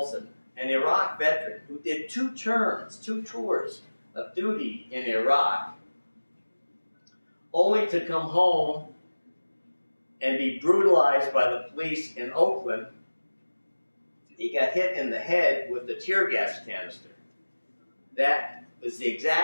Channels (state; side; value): inverted; both; correlation -1.00